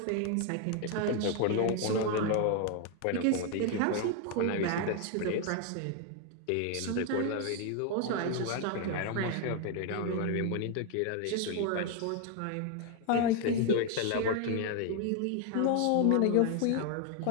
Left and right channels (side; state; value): both; different; correlation 0.01